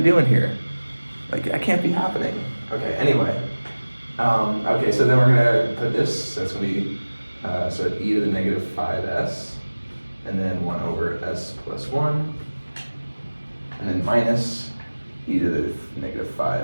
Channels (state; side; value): inverted; both; correlation -1.00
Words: doing here? Like, that can't be happening. Okay, anyway. Okay, so then we're going to put this, so it's going to be, so e to the -5s, and then 1 over s plus 1, and then minus e to the